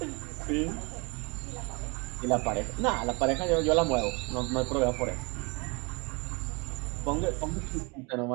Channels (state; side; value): quieter; left; 29.9 dB